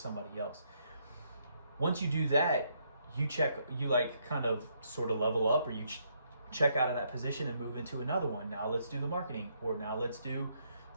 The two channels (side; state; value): both; inverted; correlation -0.74